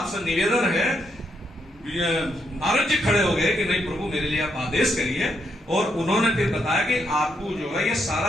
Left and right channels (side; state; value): both; normal; correlation 0.78